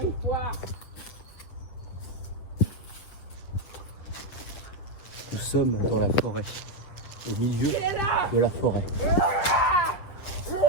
une fois. Nous sommes dans la forêt, au milieu de la forêt.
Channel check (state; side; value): late; right; 8.1 ms